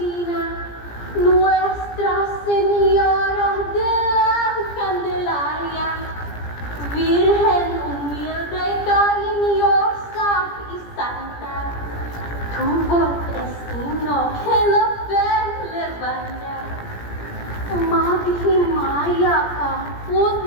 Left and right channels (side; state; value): right; late; 17 ms